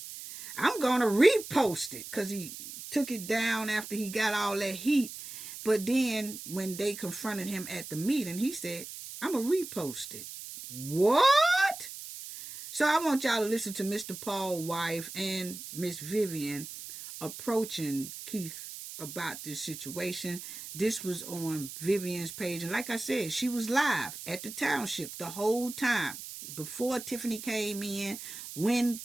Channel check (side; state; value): right; noise; hiss, 11 dB below the sound